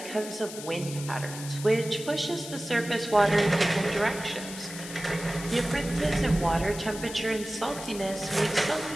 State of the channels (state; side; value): noise; left; hiss, 11 dB below the sound